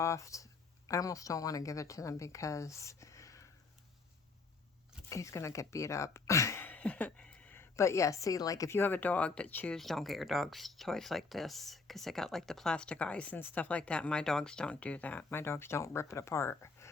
I almost don't want to give it to them because he's going to get beat up. But yeah, see, like if you have a dog that chews, don't get your dog's toys like this because they got like the plastic eyes and stuff like that. My dogs don't do that. My dogs don't rip it apart.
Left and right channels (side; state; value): right; quieter; 4.3 dB